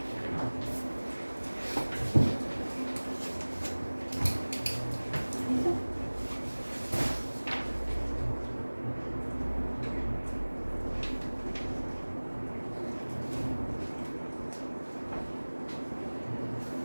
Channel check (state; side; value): inverted; both; correlation -1.00